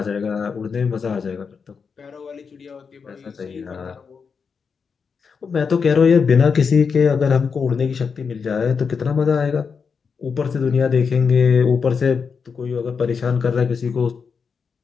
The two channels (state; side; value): quieter; right; 5.8 dB